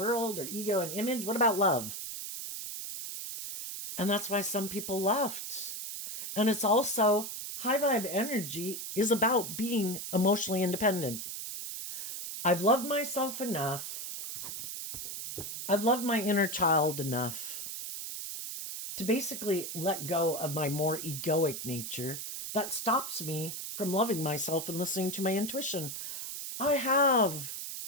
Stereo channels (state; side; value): noise; right; hiss, 6 dB below the sound